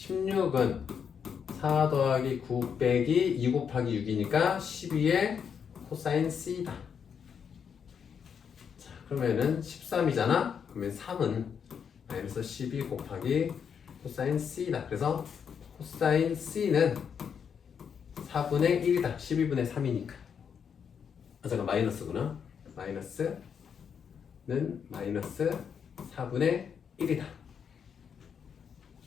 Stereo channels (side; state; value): right; quieter; 7.2 dB